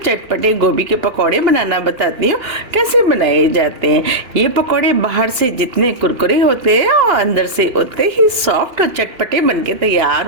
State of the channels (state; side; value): late; left; 2.8 ms